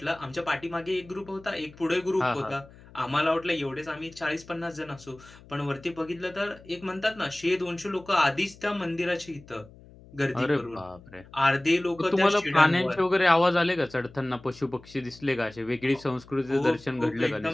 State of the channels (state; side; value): noise; left; hum, 22 dB below the sound